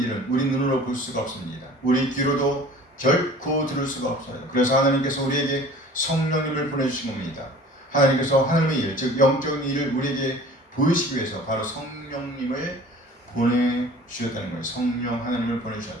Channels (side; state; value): both; normal; correlation 0.46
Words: 우리 눈으로 볼 수가 없습니다. 우리 귀로도 결코 들을 수가 없어요. 그래서 하나님께서 우리에게 성령님을 보내주신 겁니다. 하나님께서 하나님의 일, 즉 영적인 일을 우리에게 보이시기 위해서 바로 성령님을 보내주셨다는 거예요. 성령 하나님을